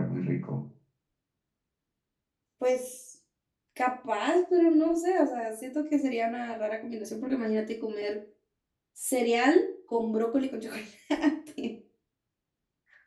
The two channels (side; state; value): both; identical; correlation 1.00